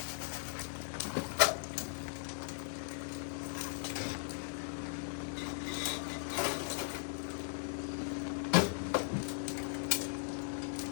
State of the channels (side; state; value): right; silent; digital silence